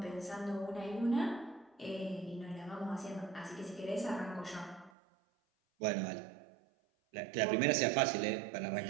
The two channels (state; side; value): drops out; left; at 4.9 s